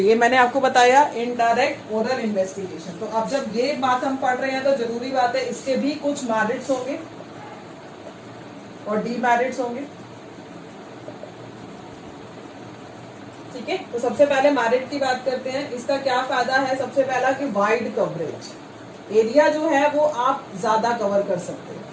मैंने आपको बताया इनडायरेक्ट ओरल इन्वेस्टिगेशन। तो अब जब ये बात हम पढ़ रहे हैं तो जरूरी बात है इसके भी कुछ मेरिट्स होंगे और डीमेरिट्स होंगे। ठीक है, तो सबसे पहले मेरिट की बात करते हैं। इसका क्या फायदा है? सबसे पहला कि वाइड कवरेज, एरिया जो है वो आप ज्यादा कवर कर सकते हैं,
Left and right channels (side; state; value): both; identical; correlation 1.00